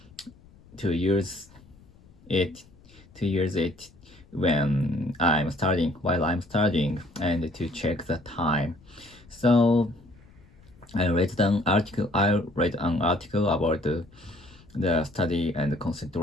to use it to use it while I'm studying and to check the time. So I read an article about the study and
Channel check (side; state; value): left; noise; rumble, 26 dB below the sound